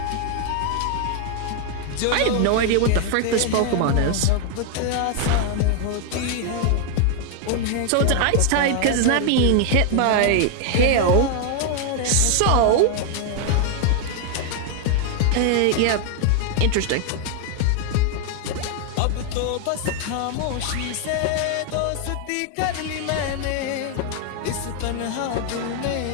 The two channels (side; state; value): both; different; correlation 0.00